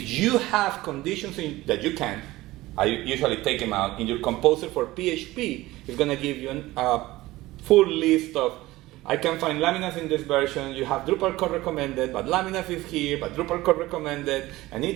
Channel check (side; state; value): left; quieter; 18.1 dB